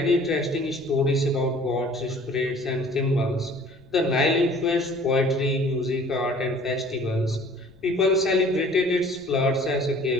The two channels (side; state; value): left; noise; rumble, 26 dB below the sound